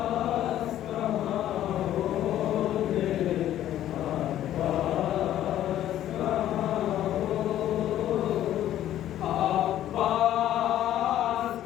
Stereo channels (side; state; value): right; quieter; 12.3 dB